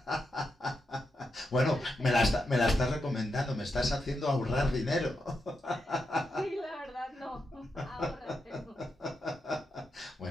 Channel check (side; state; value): both; normal; correlation 0.85